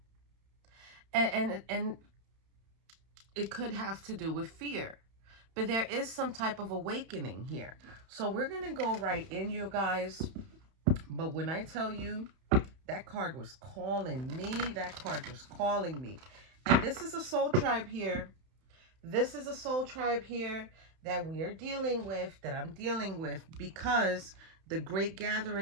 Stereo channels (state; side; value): late; left; 31 ms